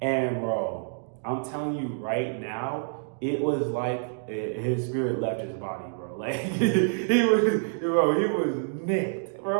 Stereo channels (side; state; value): left; silent; digital silence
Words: bro, I'm telling you right now, it was like his spirit left his body, bro. Like he was nicked.